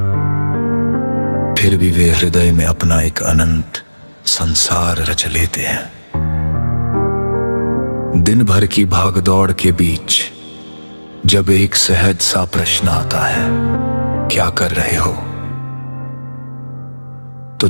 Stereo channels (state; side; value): inverted; both; correlation -1.00